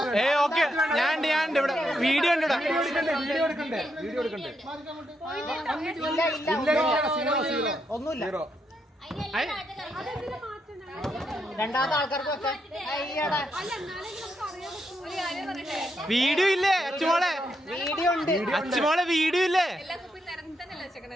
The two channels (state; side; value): normal; both; correlation 0.80